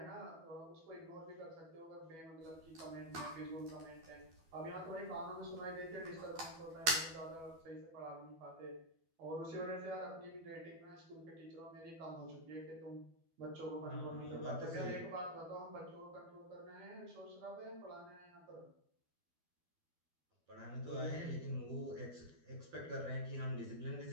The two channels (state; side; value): late; left; 12 ms